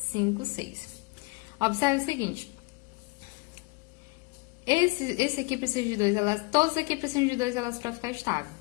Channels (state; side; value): quieter; right; 26.9 dB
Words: 6. Observe o seguinte. Esse aqui precisa de 2 elétrons. Todos aqui precisam de 2 elétrons para ficar estável.